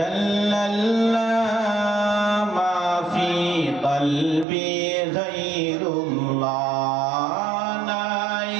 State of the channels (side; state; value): left; drops out; at 4.5 s